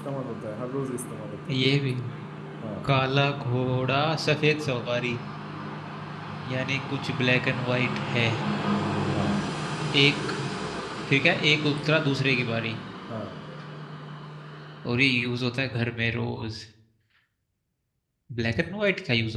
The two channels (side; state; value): both; identical; correlation 1.00